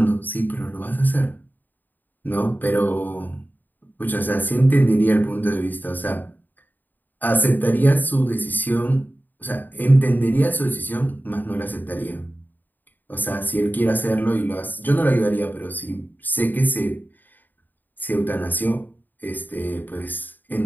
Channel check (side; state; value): right; late; 0.088 ms